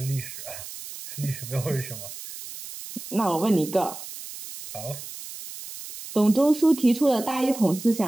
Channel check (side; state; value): right; noise; hiss, 12 dB below the sound